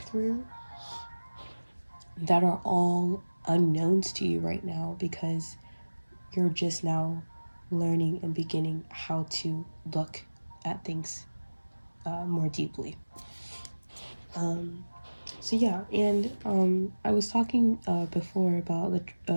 through that are all unknowns to you right now, because you're just now learning and beginning how to look at things more deeply. So yeah, and I was talking before about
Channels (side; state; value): both; inverted; correlation -1.00